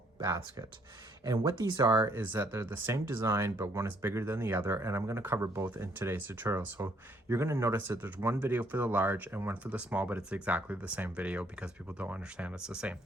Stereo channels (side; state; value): both; normal; correlation 0.67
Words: basket. And what these are is that they're the same design, but one is bigger than the other. And I'm going to cover both in today's tutorial. So you're going to notice that there's one video for the large and one for the small, but it's exactly the same video because people don't understand it's the same